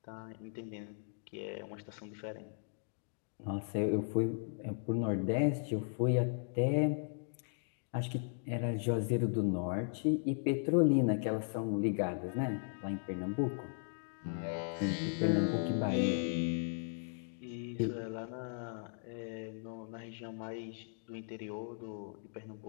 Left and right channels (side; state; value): right; silent; digital silence